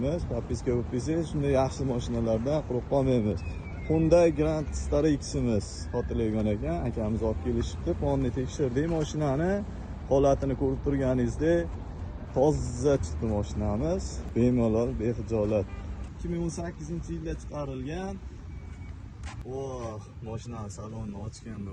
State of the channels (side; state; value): both; identical; correlation 1.00